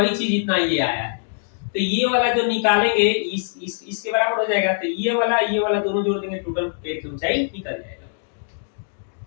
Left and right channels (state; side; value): silent; right; digital silence